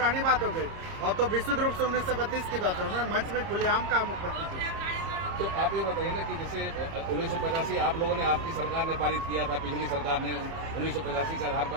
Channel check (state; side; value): late; left; 30 ms